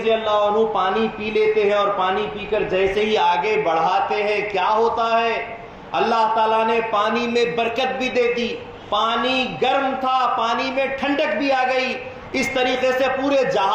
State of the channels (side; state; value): both; identical; correlation 1.00